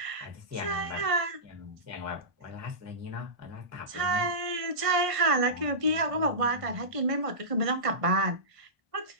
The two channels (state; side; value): late; left; 1.5 ms